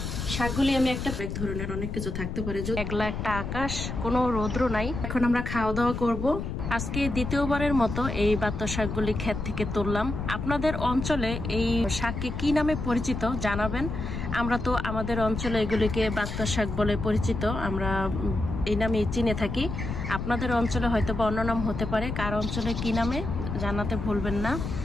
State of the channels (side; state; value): left; noise; rumble, 4 dB below the sound